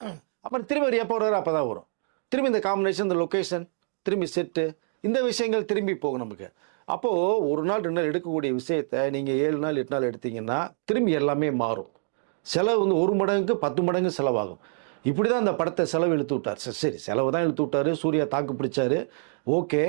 அப்புறம் திரும்பி ஒரு எப்போ வர்றாரு அப்போ தான் வரும். திரும்பி இந்த காம்பினேஷன், இந்த லொக்கேஷன், திரும்பி செட்டு, இந்த விஷயங்கள் திரும்பி போகும் நமக்கு. அப்போது ஒரு நாள் 2 நாள் எடுக்கக்கூடிய விஷயத்தை நீங்கள் 7 நாள் 8 நாள் எடுத்தீங்கன்னா திரும்பி எல்லாமே மாறும். செலவு வந்து 1 மடங்குக்கு 10 மடங்கு செலவாகும். இப்படி தான் அந்த படத்தை செலவு இழுத்து விட்டார். சரி செலவு தான் இழுத்து விட்டார். சூர்யா தாக்கு பிடிச்சாரு. ஓகே,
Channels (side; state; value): left; silent; digital silence